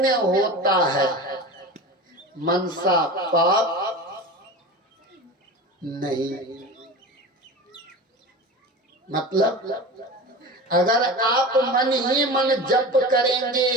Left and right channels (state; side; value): normal; both; correlation 0.31